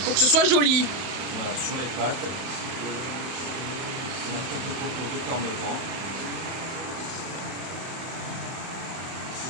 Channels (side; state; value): left; late; 31 ms